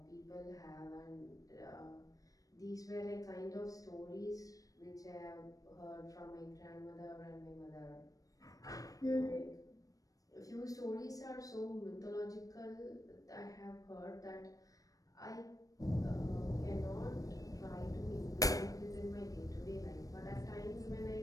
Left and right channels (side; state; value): right; late; 0.17 ms